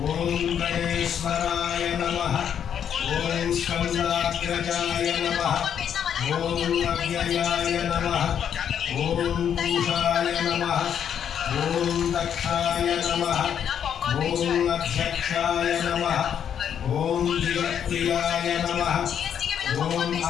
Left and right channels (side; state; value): right; quieter; 8.7 dB